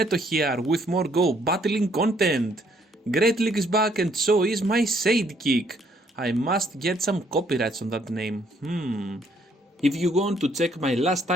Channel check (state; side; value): normal; both; correlation 0.67